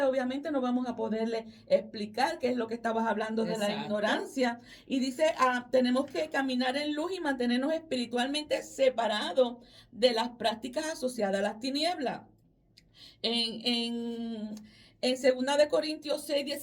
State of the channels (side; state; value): both; identical; correlation 1.00